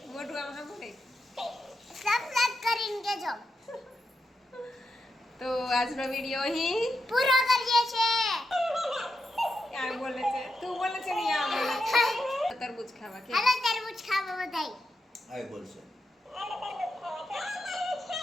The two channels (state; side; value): normal; both; correlation 0.85